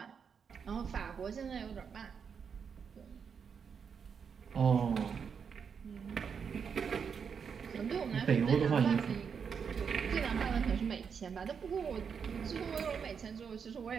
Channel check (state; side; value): quieter; left; 6.6 dB